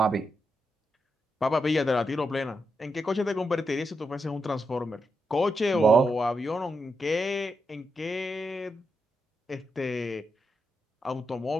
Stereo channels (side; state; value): both; normal; correlation 0.84